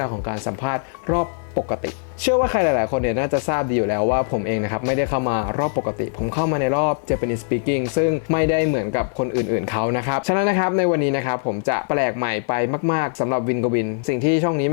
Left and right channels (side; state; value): right; silent; 56 dB below the other